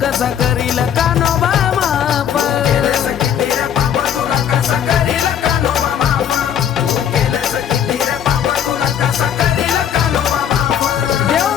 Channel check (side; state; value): right; quieter; 9.2 dB